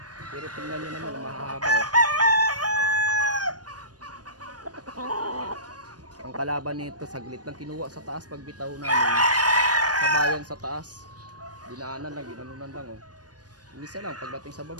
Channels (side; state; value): left; late; 0.69 ms